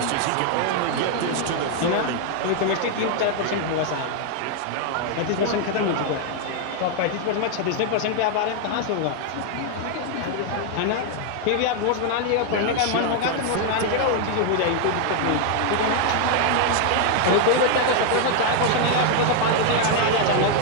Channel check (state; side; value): different; both; correlation 0.00